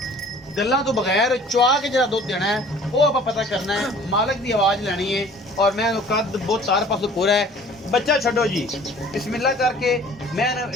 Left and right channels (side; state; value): both; normal; correlation 0.50